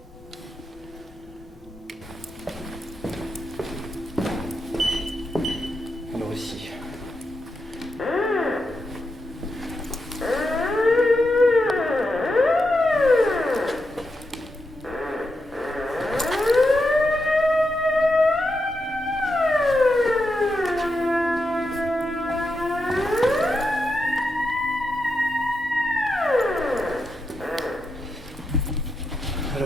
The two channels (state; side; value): normal; both; correlation 0.86